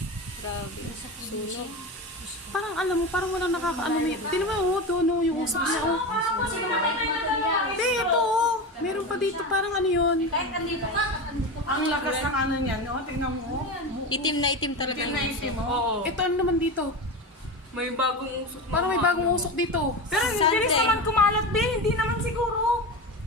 Grabe. Sunog. Parang alam mo, parang walang nakakaano. Tingnan mo, oh, doon, oh, yung usok niya, oh. Hindi, ito, oh. Meron pa dito, parang ano yun. Kahit andito ka, andito ka. Ang lakas ng ano niyan, no? Tingnan mo. Itim na itim talaga Itim yung na uso. itim, mo. Oo. Ito, ano naman dito? May bagong usok. na Parang may mga bagong ano. usok dito. Pero hindi rin Sunday. naman kumalat din. Hindi naman siguro.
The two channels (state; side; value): normal; both; correlation 0.23